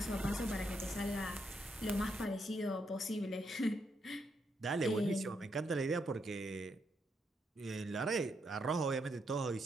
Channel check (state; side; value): normal; both; correlation 0.79